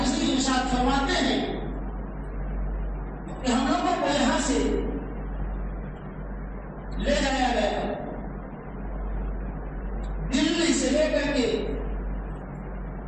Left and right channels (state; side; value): identical; both; correlation 1.00